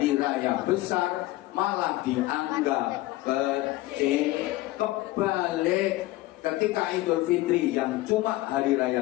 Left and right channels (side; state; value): right; quieter; 17.7 dB